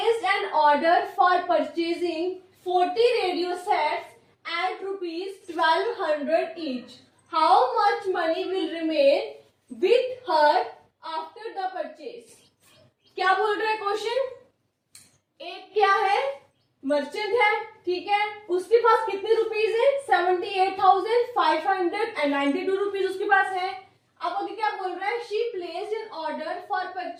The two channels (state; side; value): identical; both; correlation 1.00